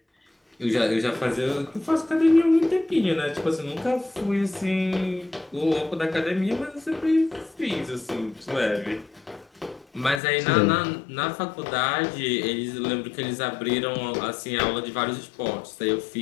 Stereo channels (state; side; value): drops out; right; at 10.2 s